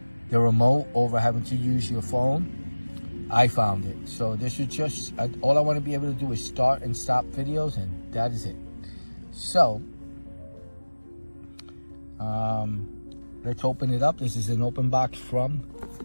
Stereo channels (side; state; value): both; inverted; correlation -1.00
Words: the remote over having to use your phone. I found it. So this is just, all I want to be able to do is start and stop videos, and that is it. So, let's open it up. This is an open box from